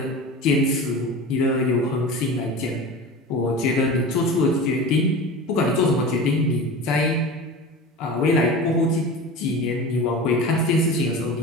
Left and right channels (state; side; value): normal; both; correlation 0.32